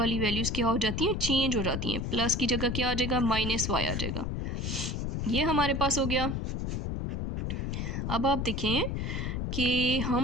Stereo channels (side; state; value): left; noise; rumble, 2 dB below the sound